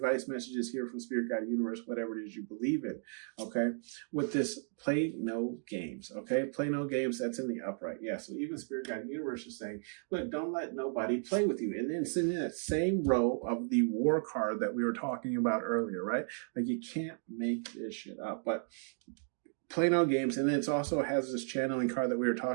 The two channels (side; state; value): left; silent; 55 dB below the other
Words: messages here from Spirit Guide Universe, whatever it is you believe in, okay? With this play no games, okay? Play no games, that's in the upright. Yeah, so even Spirit Guide Universe is saying, look, don't let nobody play with you. And then it's in that same row of the war card that we were talking about earlier, right? Like, you can't make this shit up. But play no games. And then it also has this channeling card that we were